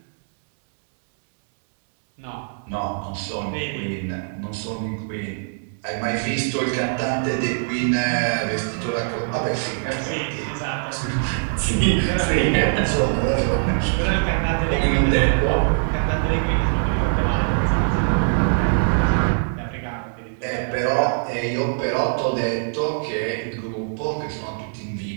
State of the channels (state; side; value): silent; left; digital silence